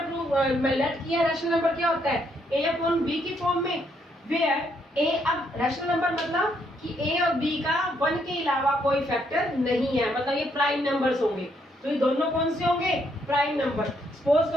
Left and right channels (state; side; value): normal; both; correlation 0.73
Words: लेट किया। रैशनल नंबर क्या होता है, a अपॉन b की फॉर्म में, वेयर a, अब रैशनल नंबर मतलब कि a और b का 1 के अलावा कोई फैक्टर नहीं है, मतलब ये प्राइम नंबर्स होंगे। तो ये दोनों कौन से होंगे, प्राइम नंबर। सपोज